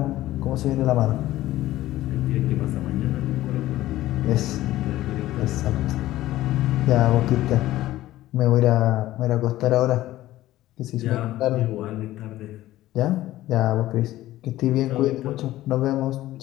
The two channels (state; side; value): quieter; right; 15.3 dB